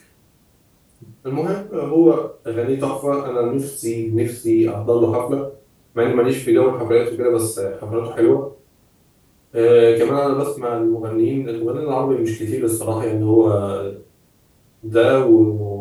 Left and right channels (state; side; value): identical; both; correlation 1.00